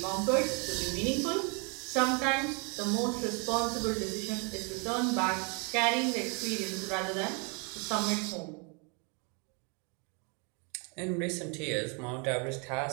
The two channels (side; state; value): left; quieter; 34.3 dB